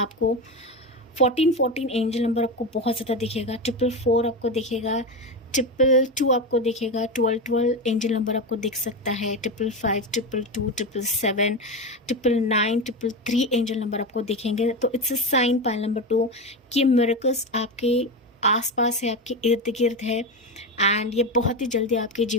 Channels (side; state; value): both; normal; correlation 0.17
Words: 14 एंजल नंबर आपको बहुत ज़्यादा दिखेगा, 444 आपको दिखेगा, 222 आपको दिखेगा, 12 एंजल नंबर आपको दिख सकता है, 555, 222, 777, 999, 333 एंजल नंबर आपको दिखेंगे। तो it's a sign pile number 2 कि मिरेकल्स आपके आसपास है, आपके इर्द गिर्द है एंड ये बहुत ही जल्दी आपके